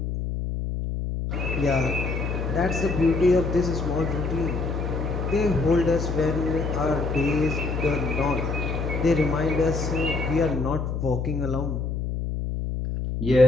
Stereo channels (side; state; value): left; noise; hum, 3 dB below the sound